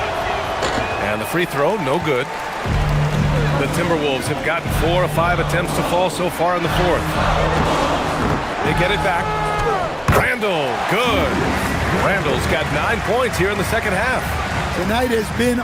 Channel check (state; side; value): identical; both; correlation 1.00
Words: And the free throw, no good. The Timberwolves have gotten 4 of 5 attempts to fall so far in the fourth. They get it back. Randall, good. Randall's got 9 points here in the second half. Tonight has been